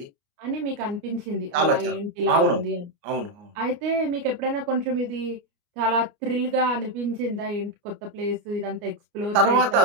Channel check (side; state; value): left; late; 29 ms